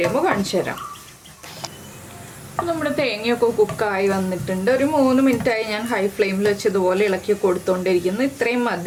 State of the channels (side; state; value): both; identical; correlation 1.00